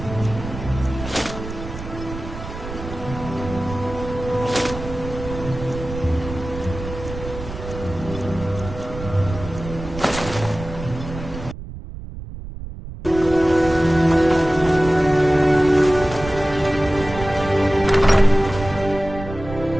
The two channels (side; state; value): right; noise; rumble, 11 dB below the sound